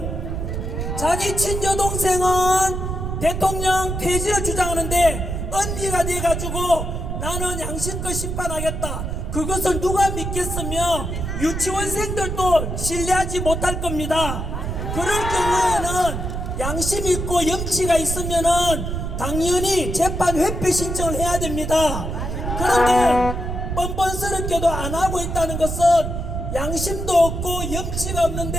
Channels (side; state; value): right; noise; rumble, 4 dB below the sound